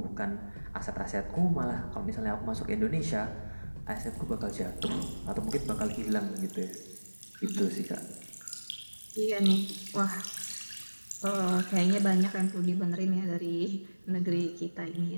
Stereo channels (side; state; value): both; inverted; correlation -1.00